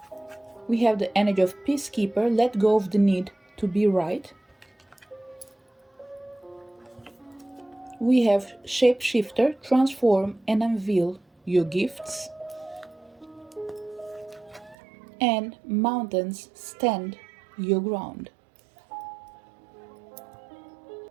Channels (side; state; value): left; drops out; at 14.8 s